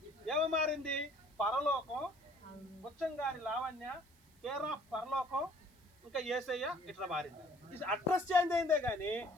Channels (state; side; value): noise; right; hiss, 30 dB below the sound